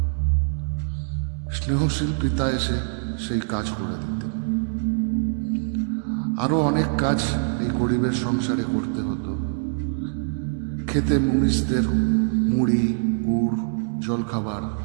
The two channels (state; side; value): silent; left; digital silence